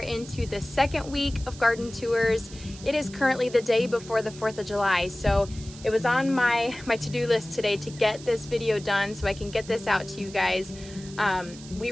the second week of garden tours. It is currently the day before the 4th of July, so it was on my to-do list today to get this video done so I can get this out to you guys. We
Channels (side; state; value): right; noise; hiss, 17 dB below the sound